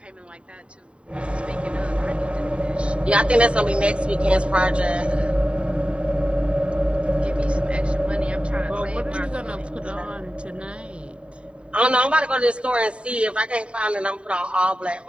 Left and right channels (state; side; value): late; left; 0.059 ms